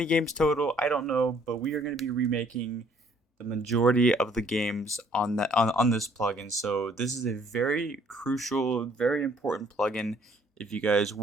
games total. I don't know, but we are going to be remaking the majority of the games on this plugin. So this is a very crucial, very important plugin if you guys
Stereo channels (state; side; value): normal; both; correlation 0.61